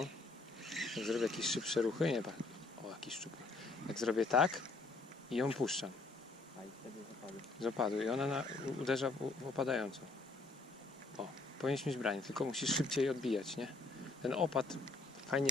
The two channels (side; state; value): right; quieter; 3.3 dB